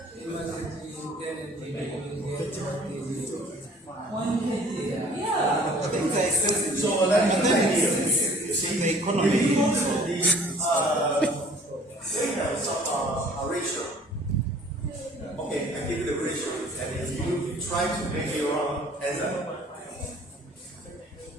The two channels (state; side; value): normal; both; correlation 0.52